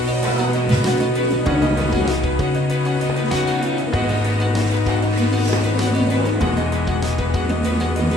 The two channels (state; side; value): normal; both; correlation 0.66